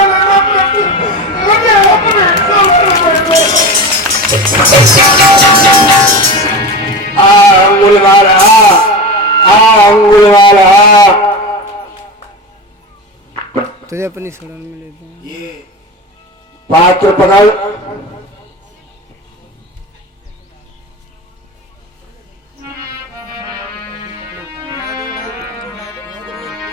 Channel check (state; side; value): normal; both; correlation 0.26